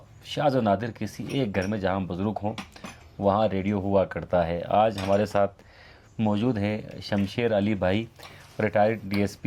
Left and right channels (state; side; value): identical; both; correlation 1.00